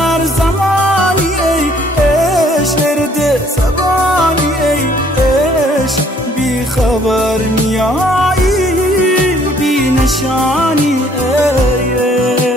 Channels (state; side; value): normal; both; correlation 0.61